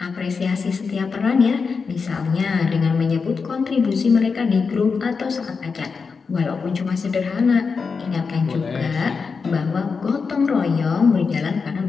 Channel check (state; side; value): quieter; right; 5.1 dB